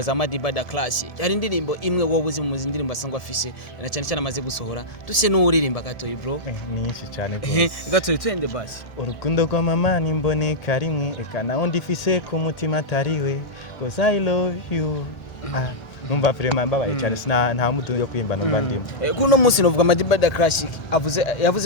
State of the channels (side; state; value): right; late; 1.8 ms